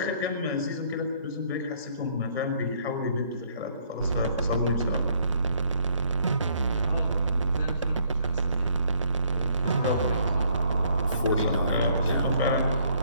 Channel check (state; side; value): inverted; both; correlation -0.65